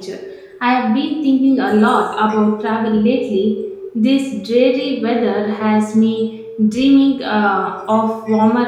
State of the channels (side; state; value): both; identical; correlation 1.00